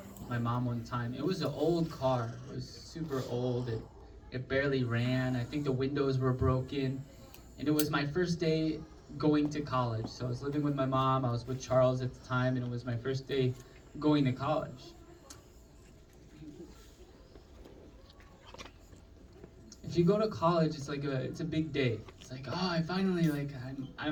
one time. It was an old car. It was super old. It barely ran. I think the windows were broken. And it was my first day going to college. So I was living with my mom. I was with Charles at the time, and it was my first day going to college. If you go to college, it's a big day. It's like, oh, I finally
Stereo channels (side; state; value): both; identical; correlation 1.00